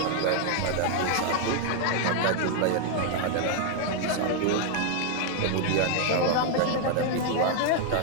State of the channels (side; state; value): both; different; correlation 0.00